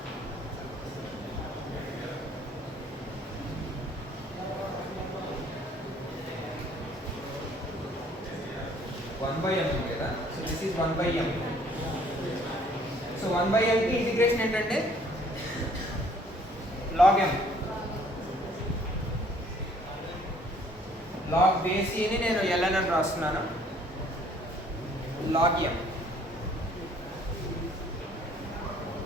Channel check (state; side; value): normal; both; correlation 0.60